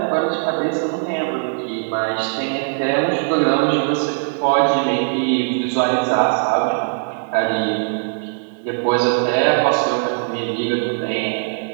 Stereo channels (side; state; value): left; silent; 66 dB below the other